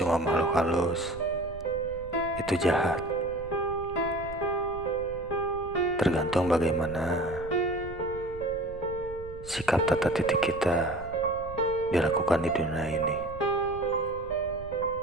makhluk halus itu jahat. Tergantung bagaimana sikap tata titik kita dilakukan di dunia ini.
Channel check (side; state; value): right; noise; rumble, 15 dB below the sound